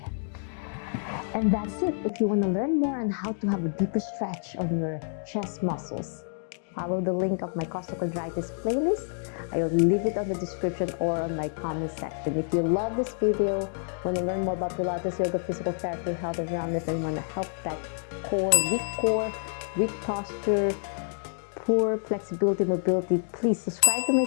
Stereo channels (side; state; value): right; silent; digital silence